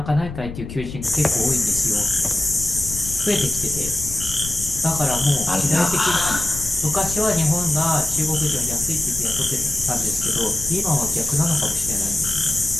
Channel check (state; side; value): noise; left; rumble, 10 dB below the sound